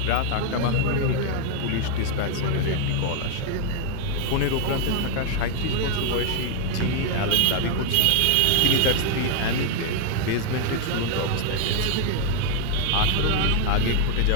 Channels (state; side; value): different; both; correlation 0.00